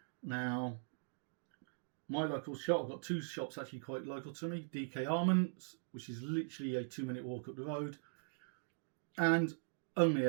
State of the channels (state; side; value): silent; left; digital silence